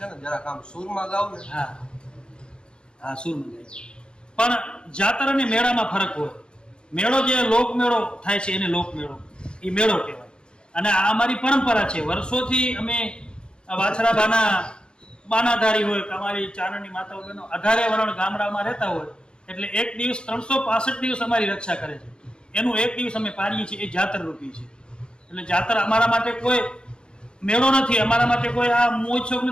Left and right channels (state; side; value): late; right; 0.051 ms